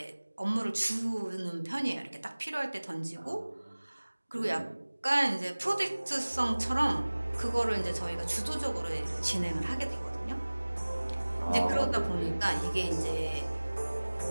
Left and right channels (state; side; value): inverted; both; correlation -1.00